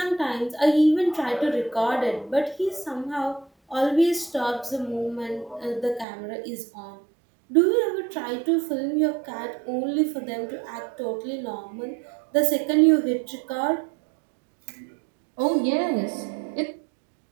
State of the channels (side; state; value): left; drops out; at 6.1 s